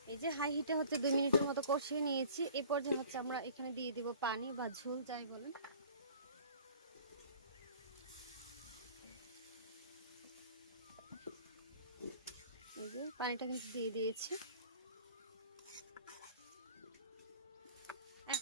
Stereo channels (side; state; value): both; inverted; correlation -0.48